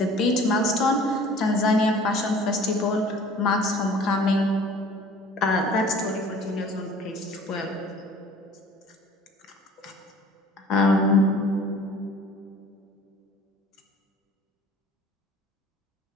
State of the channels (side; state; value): both; normal; correlation 0.48